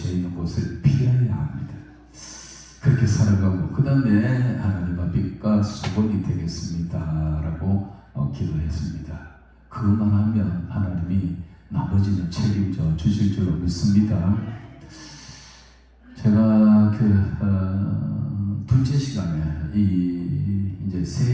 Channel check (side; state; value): both; identical; correlation 1.00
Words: 있는 곳을 피해야 합니다. 그렇게 살아가고 그 다음에 하나님 앞에 수건이 되겠습니다 라고 기도했습니다. 그것만 하면 하나님이 나머지는 책임져 주실 줄로 믿습니다. 제가 둘째 시간에 이제